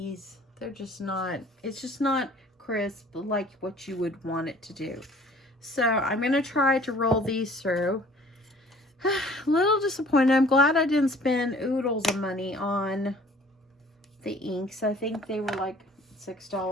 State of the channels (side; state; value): both; normal; correlation 0.52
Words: They're just not, it's just not crisp like what you would want it to do. So I'm going to try to roll these through. A little disappointed. I'm glad I didn't spend oodles of money on the inks. I think they were like